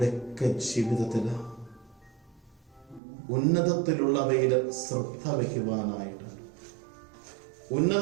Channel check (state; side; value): drops out; left; at 3.0 s